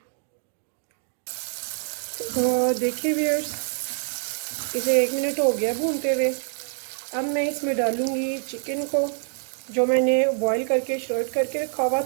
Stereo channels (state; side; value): silent; left; 61 dB below the other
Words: तो देखिए व्यूअर्स, इसे 1 मिनट हो गया भूनते हुए। अब मैं इसमें डालूँगी चिकन को जो मैंने बॉईल करके शर्ट करके रखा हुआ